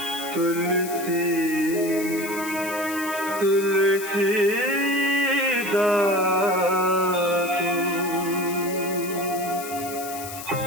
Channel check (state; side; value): noise; left; hiss, 11 dB below the sound